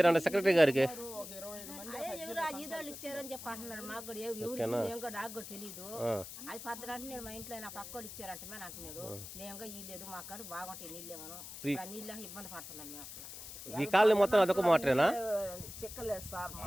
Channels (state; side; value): noise; left; hiss, 11 dB below the sound